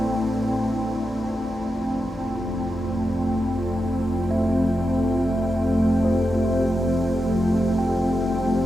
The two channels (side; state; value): both; normal; correlation 0.88